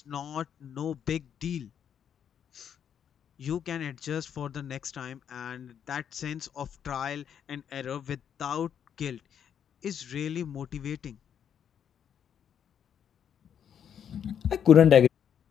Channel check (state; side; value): quieter; right; 8.6 dB